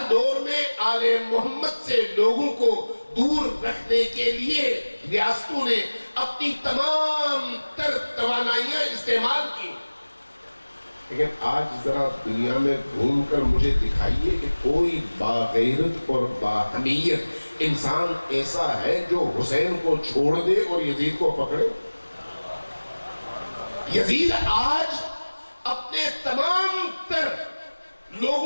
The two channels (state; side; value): inverted; both; correlation -1.00